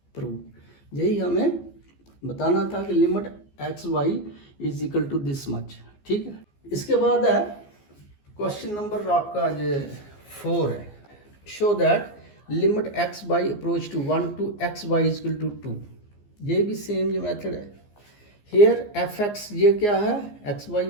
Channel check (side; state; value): right; late; 14 ms